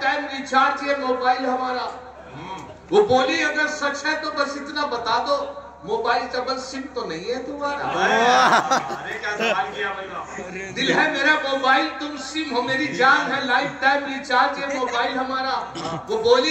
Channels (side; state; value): both; identical; correlation 1.00